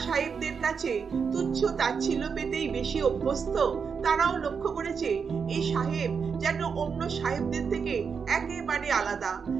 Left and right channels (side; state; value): left; quieter; 6.0 dB